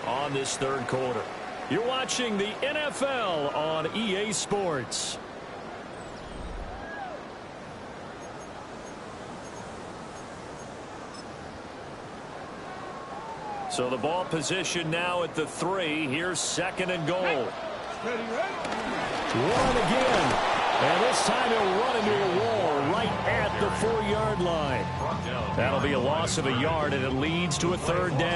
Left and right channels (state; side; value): identical; both; correlation 1.00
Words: on this 3rd quarter. You're watching the NFL on EA Sports. So the ball position now at the 3. Here's 2nd and goal. Run again. And this time he'll run into a wall right at the 4-yard line. That'll be a loss of a yard, and it leads to a 3rd